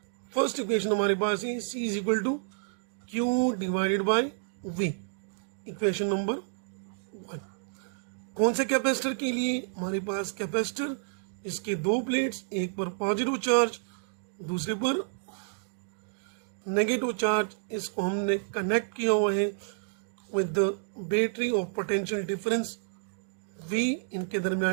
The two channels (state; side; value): silent; left; digital silence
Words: फर्स्ट इक्वेशन हमारे पास है C is equal to Q divided by V, equation number 1। कौन से कैपेसिटर के लिए? हमारे पास कैपेसिटर, इसके दो प्लेट्स, एक पर पॉजिटिव चार्ज दूसरे पर नेगेटिव चार्ज, इसको हमने कनेक्ट किया हुआ है with the battery of potential difference V, इनके